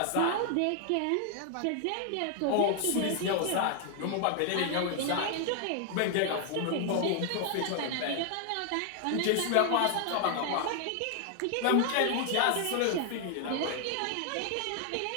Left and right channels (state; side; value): different; both; correlation 0.00